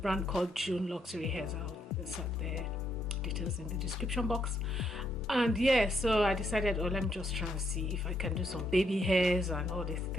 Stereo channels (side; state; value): both; normal; correlation 0.75